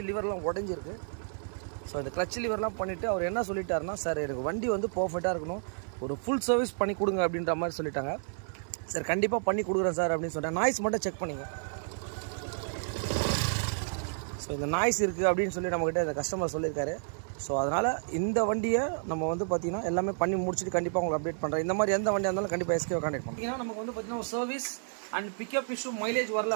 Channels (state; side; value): silent; left; 57 dB below the other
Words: லிவர்லாம் உடஞ்சிருக்கு. ஸோ இந்த கிளச் லிவர்லாம் பண்ணிவிட்டு அவர் என்ன சொல்லிட்டாருன்னா, சார் எனக்கு வண்டி வந்து பர்ஃபெக்டாக இருக்கணும், ஒரு ஃபுல் சர்வீஸ் பண்ணி கொடுங்க அப்படின்ற மாதிரி சொல்லிட்டாங்க. சார் கண்டிப்பாக பண்ணி கொடுக்குறேன் சார் அப்படின்னு சொன்னேன். நாய்ஸ் மட்டும் செக் பண்ணிங்க. ஸோ இந்த நாய்ஸ் இருக்குது அப்படின்னு சொல்லி நம்மக்கிட்ட இந்த கஸ்டமர் சொல்லியிருக்காரு. ஸோ அதனால் இந்த வண்டியை நம்ம வந்து பார்த்திங்கன்னா எல்லாமே பண்ணி முடிச்சுட்டு கண்டிப்பாக உங்களுக்கு அப்டேட் பண்ணுறேன். இந்த மாதிரி எந்த வண்டியாக இருந்தாலும் கண்டிப்பாக எஸ்கேவை கான்டெக்ட் பண்ணுறோம். ஏன்னா நமக்கு வந்து பார்த்திங்கன்னா ஒரு service and pickup issue mileage வரல